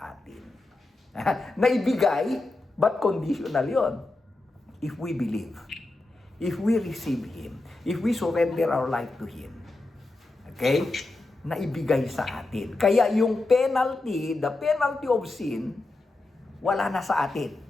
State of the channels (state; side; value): quieter; right; 3.0 dB